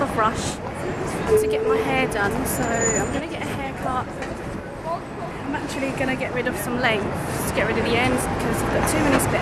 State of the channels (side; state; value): both; identical; correlation 1.00